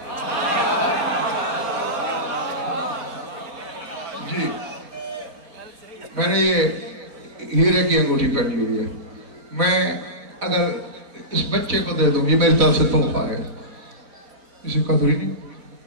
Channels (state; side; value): late; left; 4.1 ms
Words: जी, मैंने ये हीरे की अंगूठी पहनी हुई है, मैं अगर इस बच्चे को दे दूं, ये मेरी तरफ से तोहफा है, इसे कदर ही नहीं।